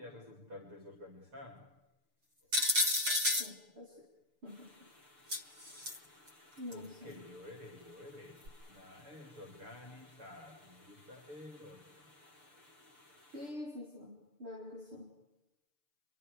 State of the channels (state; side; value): late; left; 6.8 ms